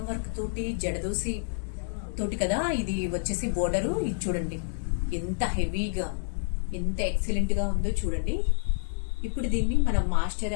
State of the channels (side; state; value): right; silent; digital silence